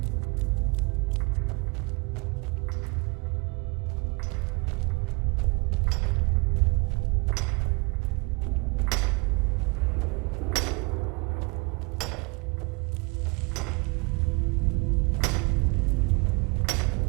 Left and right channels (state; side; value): quieter; left; 29.5 dB